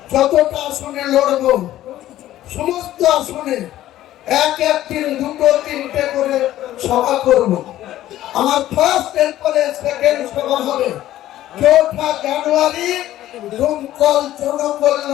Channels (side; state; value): right; quieter; 13.8 dB